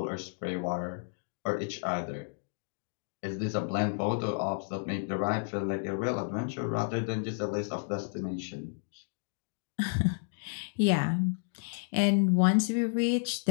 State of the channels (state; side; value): silent; right; digital silence